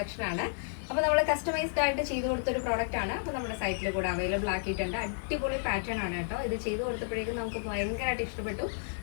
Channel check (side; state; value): right; silent; digital silence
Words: ആണ്. അപ്പോൾ നമ്മൾ കസ്റ്റമൈസ്ഡ് ആയിട്ട് ചെയ്തു കൊടുത്ത ഒരു പ്രോഡക്റ്റ് ആണ്. അപ്പോൾ നമ്മുടെ സൈറ്റിൽ കൂടെ അവൈലബിൾ ആക്കിയിട്ടുണ്ട്. അടിപൊളി പാറ്റേൺ ആണ് കേട്ടോ. ഇത് ചെയ്തു കൊടുത്തപ്പോഴേക്കും നമുക്ക് ഭയങ്കരമായിട്ട് ഇഷ്ടപ്പെട്ടു.